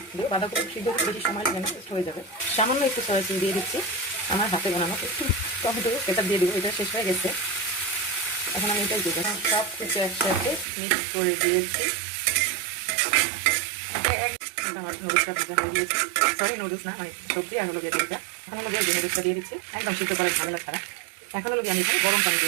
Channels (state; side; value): drops out; left; at 10.7 s